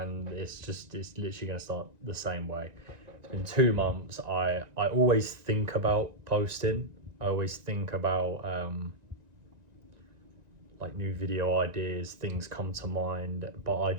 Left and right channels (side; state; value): left; late; 1.9 ms